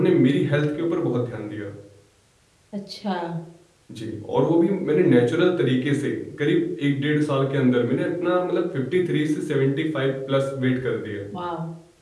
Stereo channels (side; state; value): both; identical; correlation 1.00